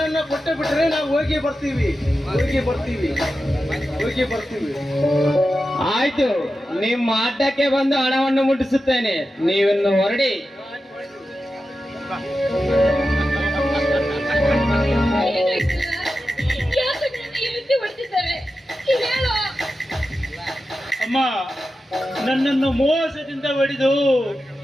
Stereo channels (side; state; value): both; normal; correlation 0.92